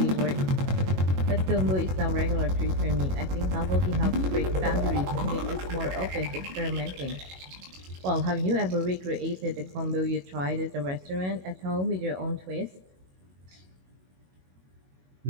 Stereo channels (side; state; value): left; late; 22 ms